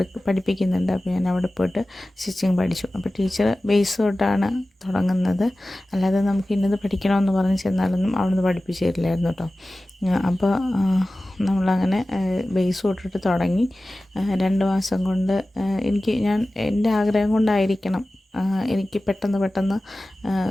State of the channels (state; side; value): normal; both; correlation 0.96